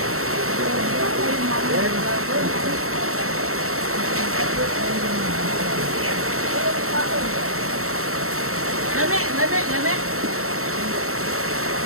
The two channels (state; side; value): late; left; 0.63 ms